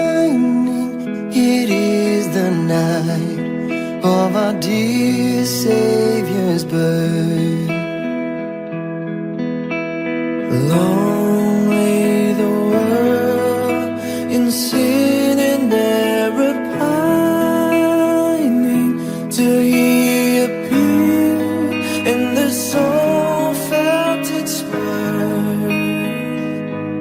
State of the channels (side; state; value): both; identical; correlation 1.00